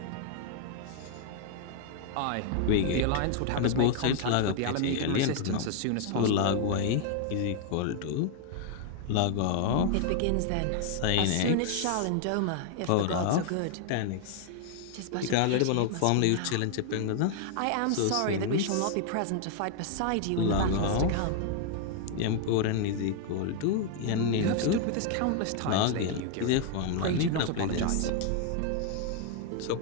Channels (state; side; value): different; both; correlation 0.00